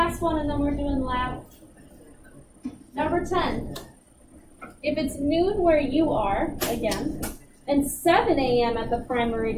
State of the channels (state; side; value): identical; both; correlation 1.00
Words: one, and then we're doing lab. Number 10. If it's noon where you are, again, and 7 a.m. at the prime